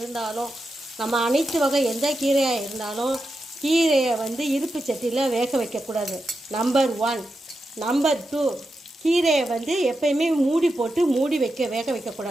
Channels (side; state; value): both; normal; correlation 0.88